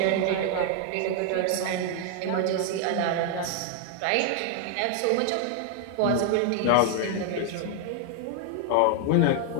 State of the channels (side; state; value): both; different; correlation 0.00